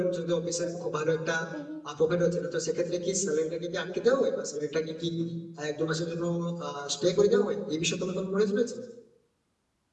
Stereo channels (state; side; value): identical; both; correlation 1.00